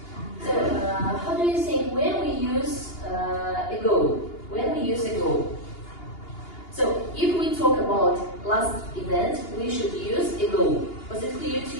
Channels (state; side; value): late; right; 2.8 ms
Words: So how do you think when we use ago? When we use ago? So if we talk about last event, we should use ago. Was it clear to